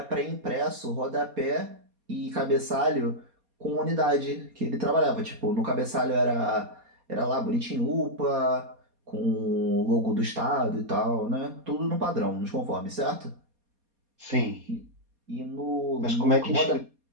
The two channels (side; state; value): left; late; 4.2 ms